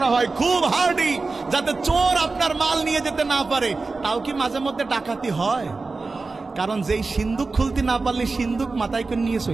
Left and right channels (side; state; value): left; quieter; 3.9 dB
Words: হয় খুব হার্ডি, যাতে চোর আপনার মাল নিয়ে যেতে না পারে। তাও কি মাঝে মধ্যে ডাকাতি হয়? কারণ যেই সিন্দুক খুলতে না পারলে সিন্দুক মাথায় করে নিয়ে